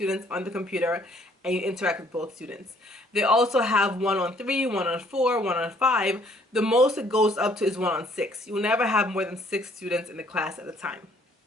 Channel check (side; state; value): both; normal; correlation 0.62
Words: on the computer and you interact with both students. They also have 1-on-3, 1-on-4, 1-on-5. The most it goes up to is 1-on-6. You'll never have more than 6 students in the class at a time.